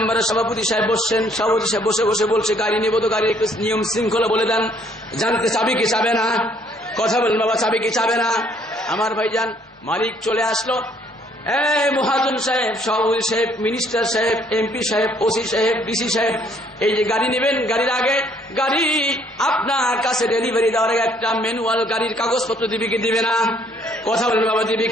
সভাপতি সাহেব বসছেন, সভাপতি সাহেব বসে বসে বলছে, গাড়ি নিব তো গাড়ির একটু নিয়ম শৃঙ্খলা বলে দেন, জানতে চাবি কি চাবে না, কথা বলেন বাবা, চাবি কি চাবে না। আমার ভাইজান মালিক চলে আসলো, এই মহাজন সাহেব, সভাপতি সাহেব, মিনিস্টার সাহেব, এমপি সাহেব, ওসি সাহেব, ডিসি সাহেব, এই যে গাড়ি নেবেন, গাড়ির আগে গাড়ি আপনার কাছে ডেলিভারি দেওয়ার আগে একটা ম্যানুয়াল গাড়ির কাগজপত্র দিবে কি দিবে না, কথা বলেন বাবা, দিবে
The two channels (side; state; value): both; normal; correlation 0.64